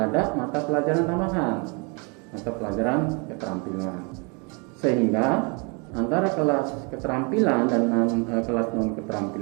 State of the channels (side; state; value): left; quieter; 32.8 dB